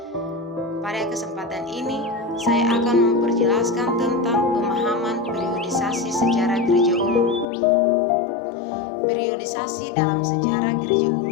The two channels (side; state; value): right; drops out; at 7.5 s